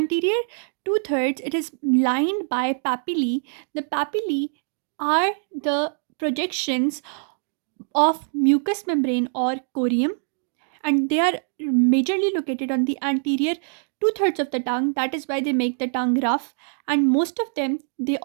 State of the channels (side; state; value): left; silent; 63 dB below the other